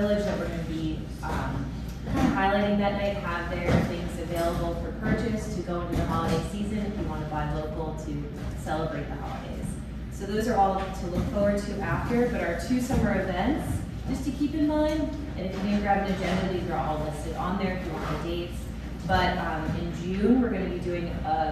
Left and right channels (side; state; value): both; identical; correlation 1.00